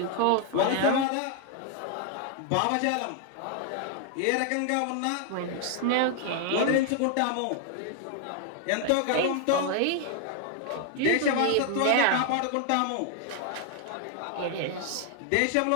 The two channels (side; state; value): both; different; correlation 0.00